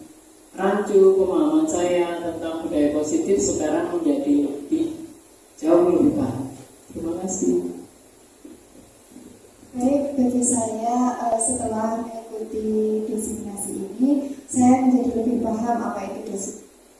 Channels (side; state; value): both; identical; correlation 1.00